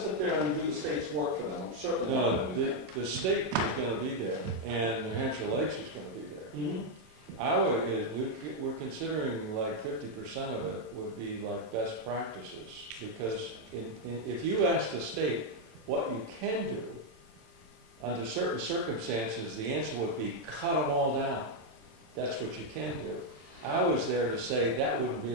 there and do the state's work for them, I'm certainly not No, gonna do that. the state is gonna be there, and New Hampshire Lakes is gonna be there. Mhm. We're considering like 50% of it would be like best practices, because if you ask the state what you can do, under certain circumstances, the answer would be cut them all down. That's what you can do. I was there to say that wouldn't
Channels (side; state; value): left; late; 27 ms